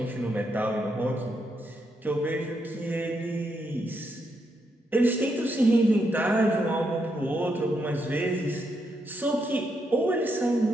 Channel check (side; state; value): both; normal; correlation 0.80